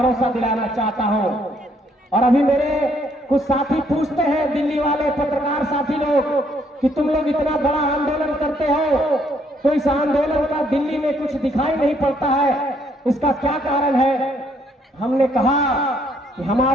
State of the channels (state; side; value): normal; both; correlation 0.68